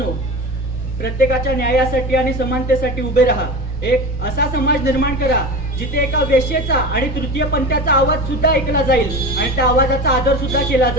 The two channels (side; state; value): both; normal; correlation 0.29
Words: प्रत्येकाच्या न्यायासाठी आणि समानतेसाठी उभे राहा। एक असा समाज निर्माण करा जिथे एका वेश्येचा आणि तृतीय पंथाचा आवाज सुद्धा ऐकला जाईल आणि त्या आवाजाचा आदर सुद्धा केला